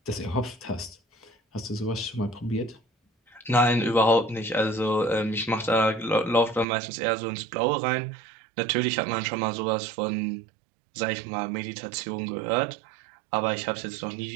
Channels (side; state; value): left; drops out; at 6.7 s